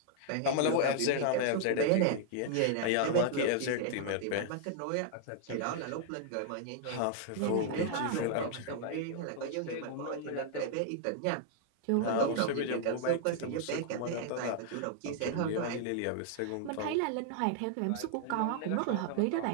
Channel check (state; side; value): different; both; correlation -0.01